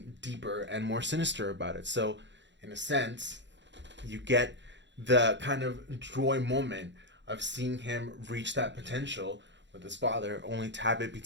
deeper and more sinister about it. So, in a sense, you get the kind of joy moment of seeing him reach that potential with his father, only to have it be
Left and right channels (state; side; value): late; left; 0.52 ms